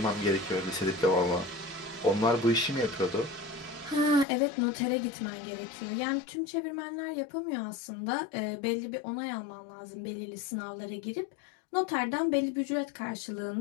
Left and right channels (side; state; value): right; drops out; at 4.2 s